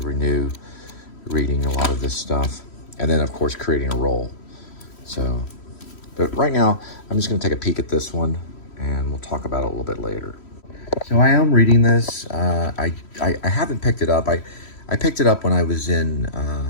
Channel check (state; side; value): late; right; 3.1 ms